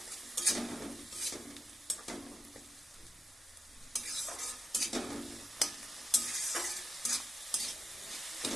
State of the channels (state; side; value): normal; both; correlation 0.88